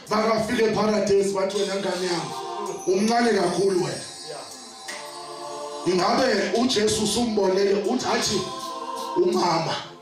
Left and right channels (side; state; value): both; identical; correlation 1.00